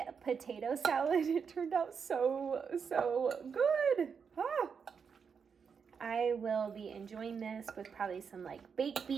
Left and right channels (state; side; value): quieter; left; 6.3 dB